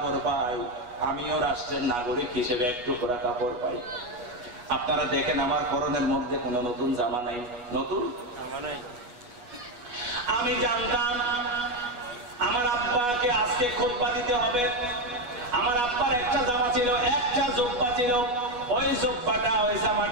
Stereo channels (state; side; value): late; left; 8.2 ms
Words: পাই, আমিও রাষ্ট্রের নাগরিক হিসেবে একটু করা কাপড় পাই। আপনারা দেখেন আমার পরনের মধ্যে কোনো নতুন জামা নাই, নতুন জামা নাই। আমি জানতাম আমার আব্বাকে আজকে খুতবা দিতে হবে। আমার আব্বার একটা জামা ছিল, একটা জুব্বা ছিল। ওই জুব্বাটা, ওই